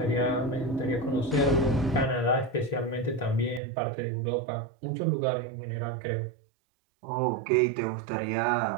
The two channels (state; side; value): drops out; left; at 3.6 s